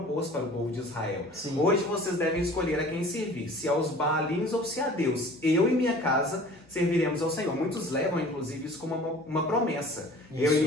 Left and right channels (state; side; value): normal; both; correlation 0.46